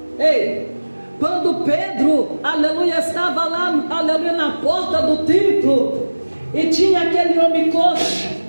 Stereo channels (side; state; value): both; inverted; correlation -1.00